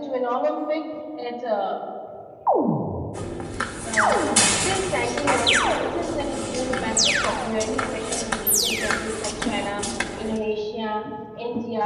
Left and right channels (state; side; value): identical; both; correlation 1.00